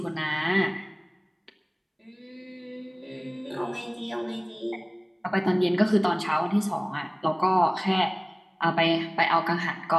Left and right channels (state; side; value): identical; both; correlation 1.00